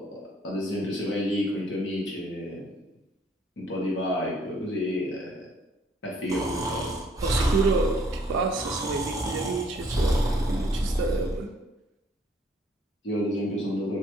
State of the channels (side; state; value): both; normal; correlation 0.63